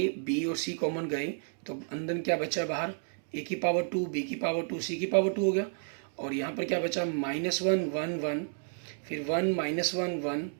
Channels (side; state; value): left; silent; 57 dB below the other